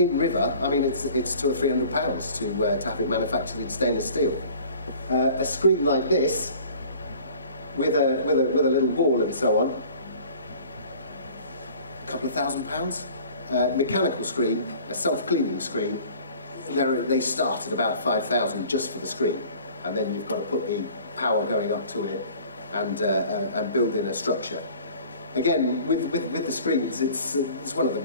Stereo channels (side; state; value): both; inverted; correlation -0.48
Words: river. I mean, it's £200 or £300 to have it manufactured in stainless steel. A screen like this, with a little wall and so on, a couple of £1,000. Mechanical screen, a self-cleaning screen, they start at about 5,000 just for the screen, and then you've got to put the power going up to it and build in a structure. Again, with the screens, it's one of the